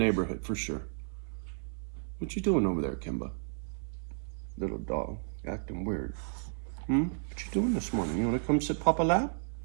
for sure. What you doing over there, Kimba? Little dog, acting weird. What you doing this morning? You want to come sit Papa lap?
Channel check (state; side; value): silent; left; 56 dB below the other